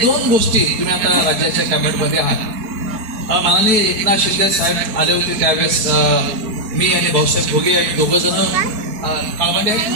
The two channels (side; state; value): left; late; 4.6 ms